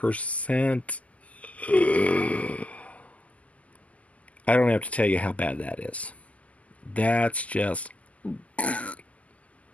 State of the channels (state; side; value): late; right; 0.070 ms